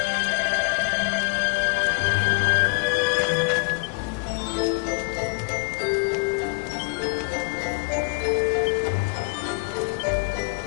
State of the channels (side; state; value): right; quieter; 33.5 dB